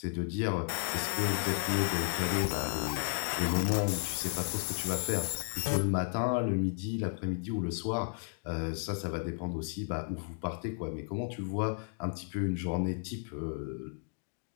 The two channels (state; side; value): silent; right; 55 dB below the other